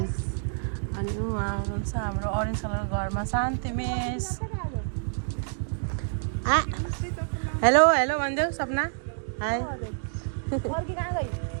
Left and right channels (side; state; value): left; silent; digital silence